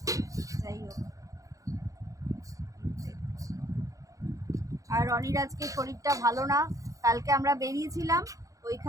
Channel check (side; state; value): left; late; 0.16 ms